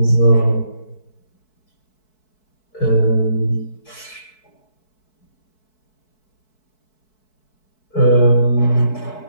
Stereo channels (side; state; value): right; late; 4.6 ms